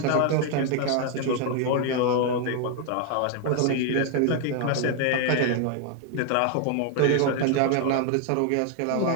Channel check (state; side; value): different; both; correlation 0.00